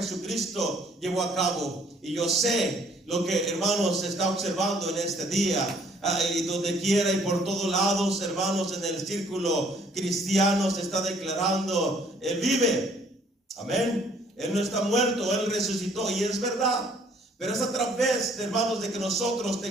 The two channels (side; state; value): both; normal; correlation 0.61